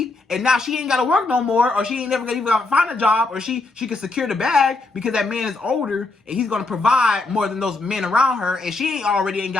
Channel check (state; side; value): quieter; right; 3.4 dB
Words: and now she ain't got to work no more, or she ain't never gonna even find a job, or she can secure the bag because that man is older and he's gonna provide more than those men around her, and she ain't